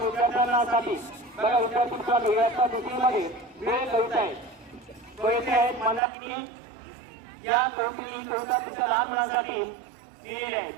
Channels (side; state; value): left; drops out; at 6.0 s